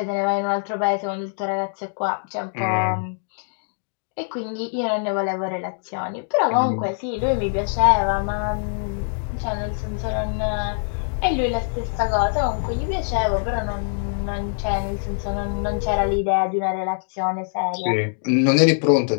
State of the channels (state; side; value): silent; right; digital silence